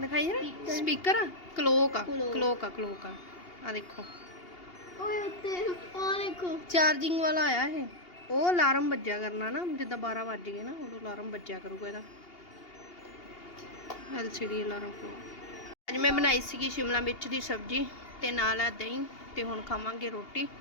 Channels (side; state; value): right; late; 2.8 ms